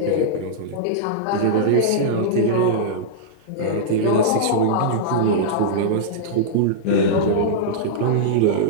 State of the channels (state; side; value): different; both; correlation -0.03